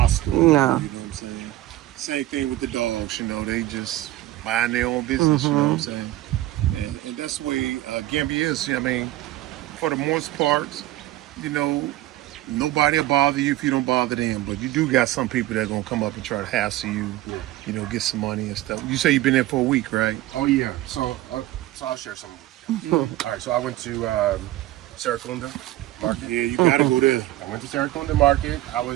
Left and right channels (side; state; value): left; quieter; 15.7 dB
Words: No. You know what I'm saying? Same thing with the dogs, they just mind their own business, you know what I'm saying? And that's the way Gambia is. I mean, for the most part, nobody will bother you if you don't bother them. But you do got some people that are going to come up and try to hassle you, get some money and stuff. You say you've been there for a week, right? Oh yeah. So I'll share some. All right. So I went to Seracunda Market. Yeah, you got to go there. I went to Seracunda Market. I